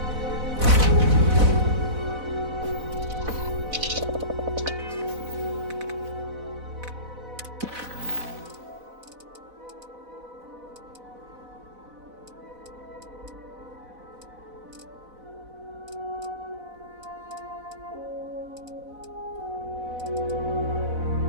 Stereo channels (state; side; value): late; left; 4.0 ms